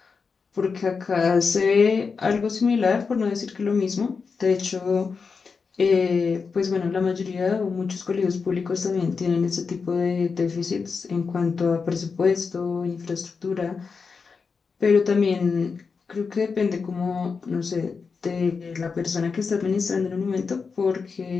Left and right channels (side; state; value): right; quieter; 5.1 dB